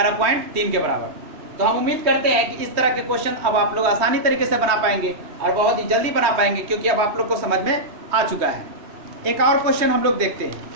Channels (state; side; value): late; left; 3.2 ms